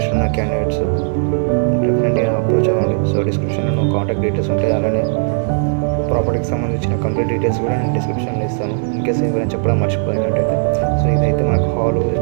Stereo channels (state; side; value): silent; left; digital silence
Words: ఉన్న క్యాండిడేట్స్ డెఫినెట్గా అప్రోచ్ అవ్వండి. సో డిస్క్రిప్షన్లో కాంటాక్ట్ డీటెయిల్స్ ఉంటాయి. అలానే ప్రాపర్టీకి సంబంధించిన కంప్లీట్ డీటెయిల్స్ కూడా నేను డిస్క్రిప్షన్లో ఇస్తాను. ఇన్కేస్ ఏమైనా చెప్పడం మర్చిపోయినట్టయితే. సో ఇదైతే మనకు హాల్,